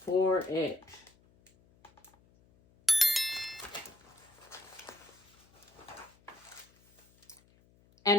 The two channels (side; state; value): left; noise; hum, 30 dB below the sound